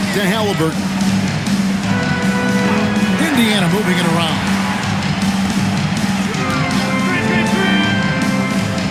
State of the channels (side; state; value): both; identical; correlation 1.00